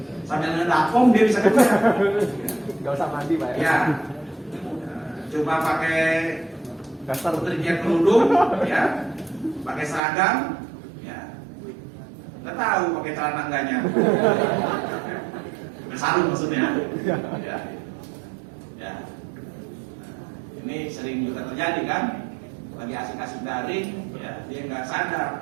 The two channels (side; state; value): left; drops out; at 10.0 s